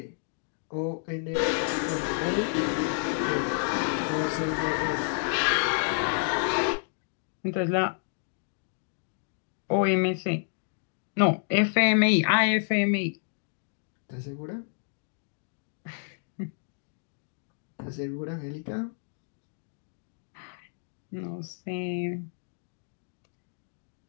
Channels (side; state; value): right; silent; digital silence